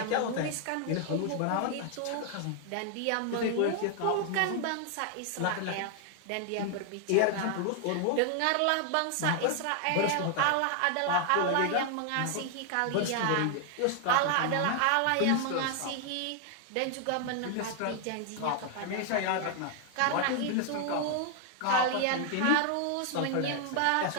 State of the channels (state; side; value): different; both; correlation 0.00